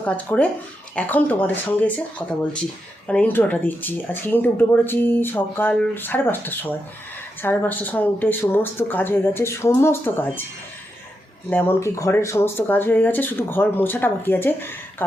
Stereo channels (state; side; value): normal; both; correlation 0.85